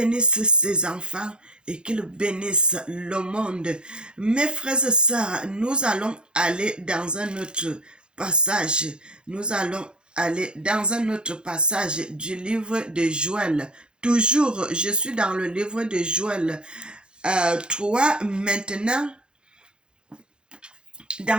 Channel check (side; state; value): left; late; 0.050 ms